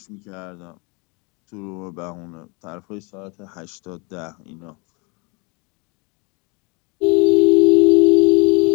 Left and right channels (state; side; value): quieter; right; 31.0 dB